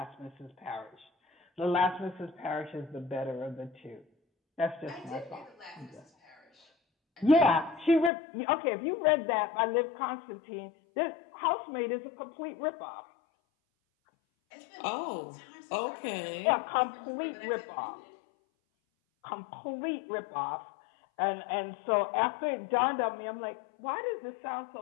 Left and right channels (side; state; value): right; drops out; at 8.1 s